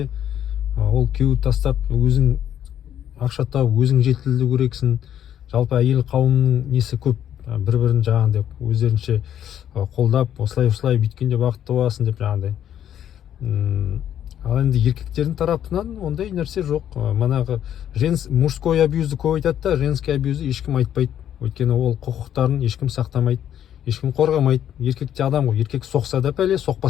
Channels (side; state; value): right; quieter; 10.3 dB